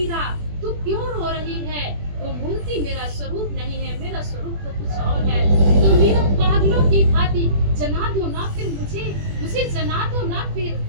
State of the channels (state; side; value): late; left; 21 ms